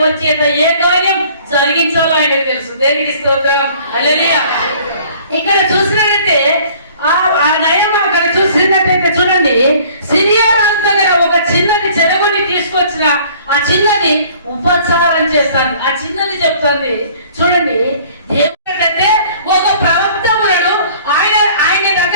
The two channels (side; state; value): both; inverted; correlation -0.53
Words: చేత ఏ కార్యం జరిగించాలో ఆయన తెలుసు. తెలుసు. దేవునికి స్తోత్రం. హల్లెలూయా. ఇక్కడ చూసినట్లయితే ఆ నయం అక్కడ చూసినట్టయితే చూడండి, సిరియా రాజు దగ్గర ఒక చిన్నది చెరగొని తీసుకొచ్చిన ఆ చిన్నది ఉపచారం చేస్తాను. ఆ చిన్నది చెప్తుంది చూడండి, దేవుడంటే ఒక ప్రవక్త ఉన్నాడు, ఆయన